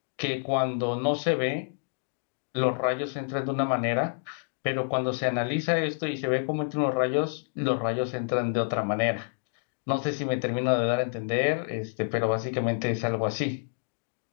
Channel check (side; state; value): right; silent; digital silence